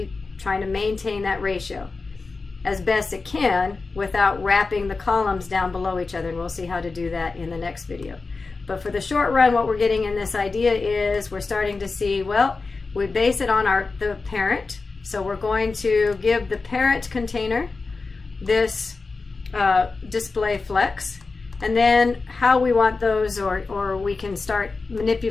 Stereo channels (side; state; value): right; quieter; 4.0 dB